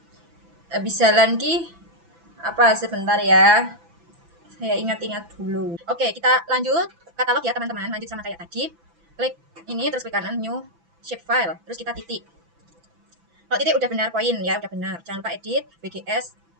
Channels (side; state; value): left; late; 6.0 ms